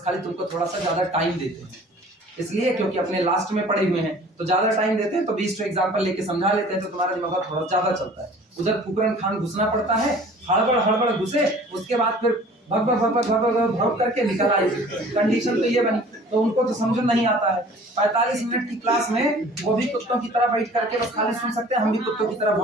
खाली तुमको थोड़ा सा ज्यादा टाइम देते हैं, इसलिए क्योंकि अपने लास्ट में पढ़े हुए हैं, तो ज्यादा टाइम देते हैं, तो 20 एग्जांपल लेके समझा लेते हैं, तो तुम्हारा दिमाग थोड़ा ज्यादा चलता है। उधर फुकरन खान घुसना पड़ता है, हड़बड़ घुसे, उसके बाद फिर भग करके निकल आई। कंडीशन तो ये बनी, तो उनको तो समझ नहीं आता है। 45 मिनट की क्लास में वो भी कुत्तों की तरह बैठ करके बस खाली सुन सकते हैं, हम भी कुत्तों की तरह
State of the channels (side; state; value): both; normal; correlation 0.48